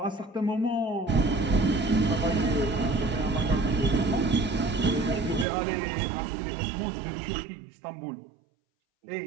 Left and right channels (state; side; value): drops out; left; at 5.5 s